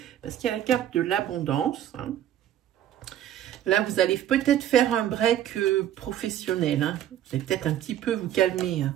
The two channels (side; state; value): left; quieter; 11.3 dB